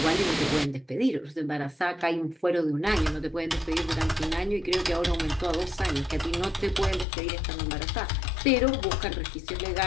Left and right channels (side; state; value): right; drops out; at 7.1 s